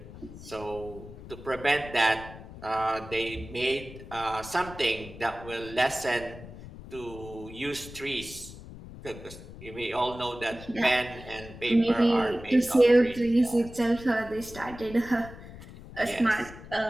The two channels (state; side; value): noise; left; rumble, 15 dB below the sound